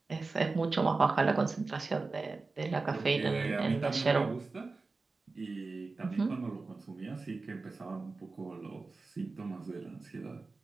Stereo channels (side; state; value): left; quieter; 3.8 dB